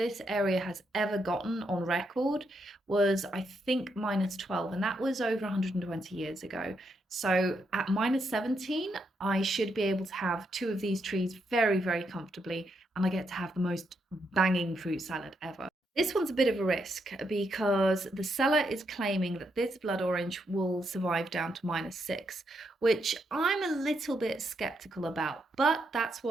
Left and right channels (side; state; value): both; normal; correlation 0.79